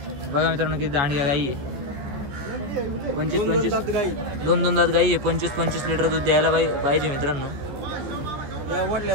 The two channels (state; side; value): late; left; 14 ms